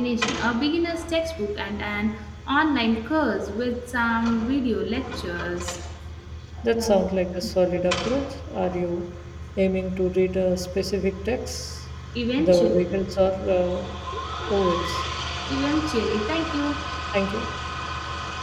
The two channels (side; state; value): both; identical; correlation 1.00